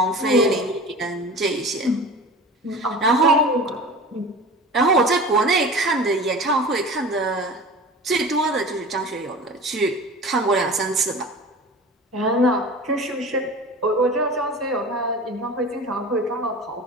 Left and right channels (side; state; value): both; normal; correlation 0.36